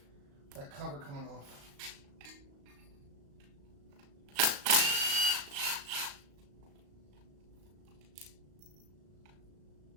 that cover coming off.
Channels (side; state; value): left; late; 35 ms